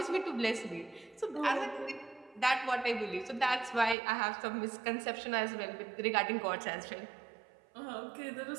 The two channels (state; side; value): drops out; left; at 4.0 s